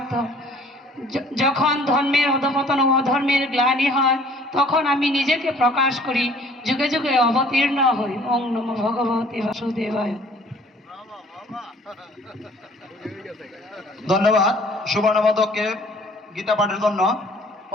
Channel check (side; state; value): both; normal; correlation 0.54